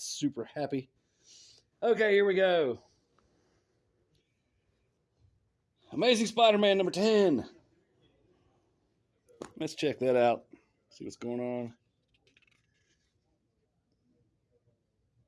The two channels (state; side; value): identical; both; correlation 1.00